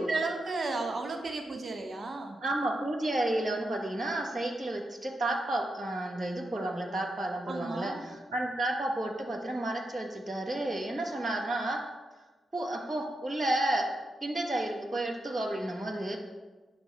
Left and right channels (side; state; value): both; normal; correlation 0.86